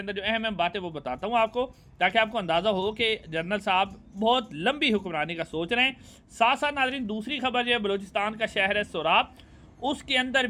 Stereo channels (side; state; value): both; identical; correlation 1.00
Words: अंदर जो अहम अहम बातें वो बताता हूँ आपको, ताकि आपको अंदाज़ा हो कि जनरल साहब बहुत लंबी हुक्मरानी का सोच रहे हैं। साथ साथ नाज़रीन, दूसरी खबर जो है, बलूचिस्तान का शहर है सोराब, उसके अंदर